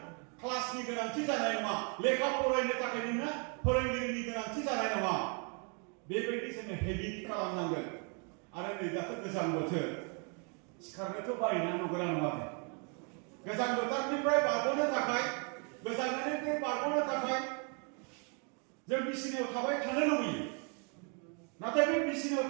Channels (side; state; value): left; quieter; 37.7 dB